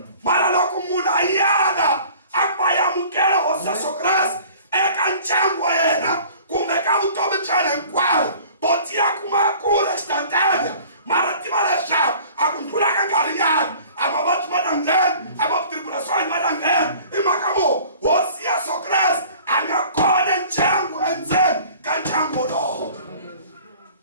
xana hinkwayo botiya kuma kula instantânea mara tiva leswaku a ku ndlula ka nkarhinyana a mavabyi ma ta nghena a matribulações ma ta nghena hi mhaka mo hosi Yesu Kreste a nga kona ndyangu endzeni ka ndyangu lowo.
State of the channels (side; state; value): both; inverted; correlation -0.48